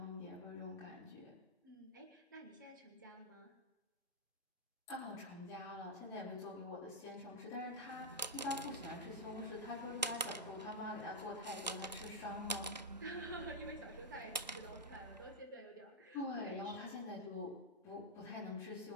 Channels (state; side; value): normal; both; correlation -0.04